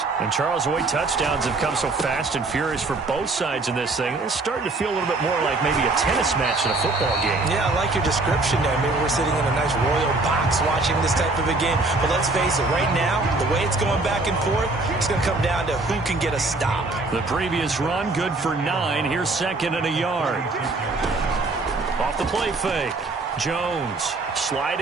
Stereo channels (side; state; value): left; quieter; 3.3 dB